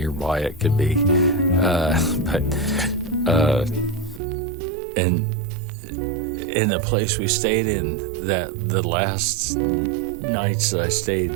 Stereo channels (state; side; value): drops out; left; at 4.2 s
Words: it could be. And in the place we stayed in, that the last nights that I stayed